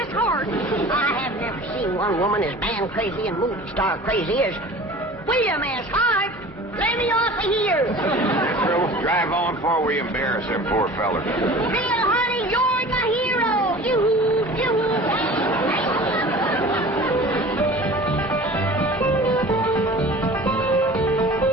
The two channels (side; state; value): both; normal; correlation 0.41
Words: Hart. I have never seen one woman as man crazy and movie star crazy as William S. Hart. Let me off of here. Pearl, drive on before we embarrass them poor fellers. Bill, honey, you're the hero.